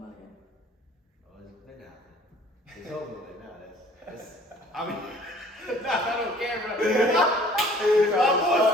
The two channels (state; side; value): normal; both; correlation 0.53